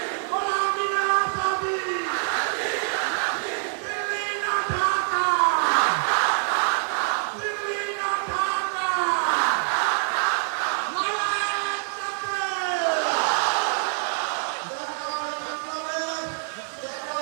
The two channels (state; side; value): silent; left; 61 dB below the other